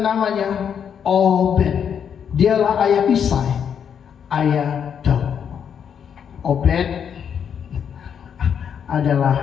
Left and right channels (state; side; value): quieter; right; 7.9 dB